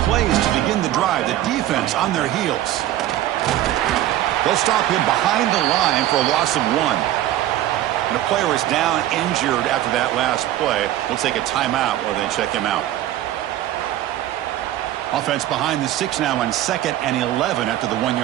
plays to begin the drive. The defense on their heels. They'll stop him behind the line for a loss of 1. And a player is down injured after that last play. We'll take a timeout while they check him out. Offense behind the 6 now on 2nd and 11 after the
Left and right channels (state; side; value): quieter; left; 13.5 dB